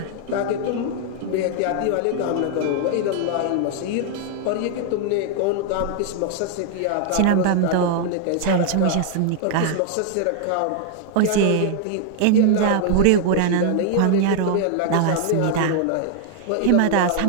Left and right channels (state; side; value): different; both; correlation 0.00